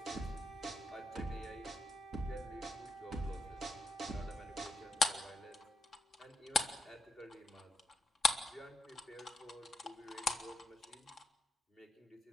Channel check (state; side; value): normal; both; correlation 0.81